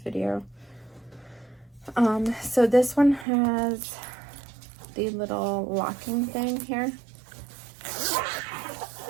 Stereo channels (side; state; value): left; drops out; at 3.2 s